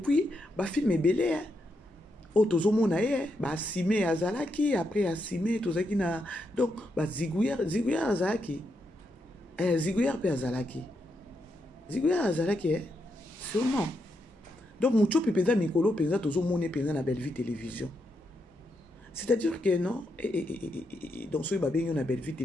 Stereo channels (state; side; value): normal; both; correlation 0.82